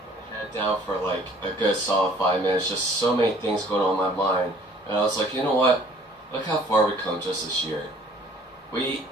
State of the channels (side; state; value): both; normal; correlation 0.55